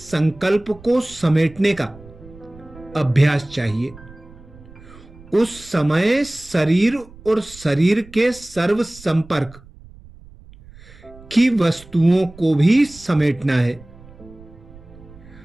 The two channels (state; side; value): noise; right; rumble, 21 dB below the sound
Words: को समेटने का अभ्यास चाहिए। उस समय शरीर और शरीर के सर्व संपर्क की वस्तुओं को भी समेटना है।